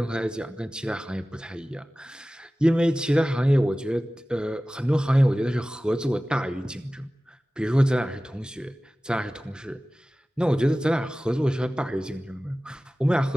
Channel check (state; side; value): normal; both; correlation 0.97